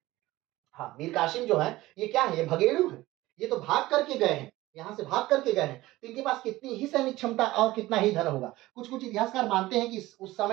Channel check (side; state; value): left; quieter; 17.8 dB